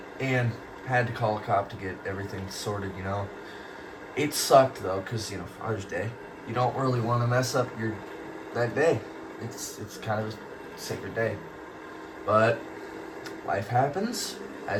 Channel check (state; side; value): identical; both; correlation 1.00